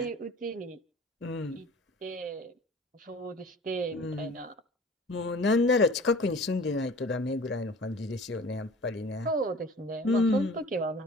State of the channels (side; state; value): both; normal; correlation 0.44